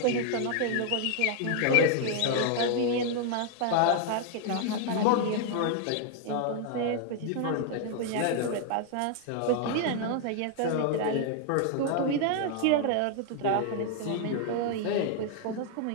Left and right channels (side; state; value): both; different; correlation 0.00